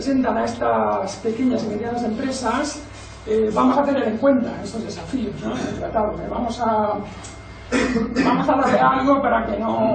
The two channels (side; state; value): both; identical; correlation 1.00